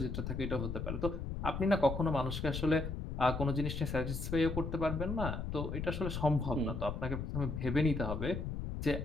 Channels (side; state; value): left; noise; rumble, 4 dB below the sound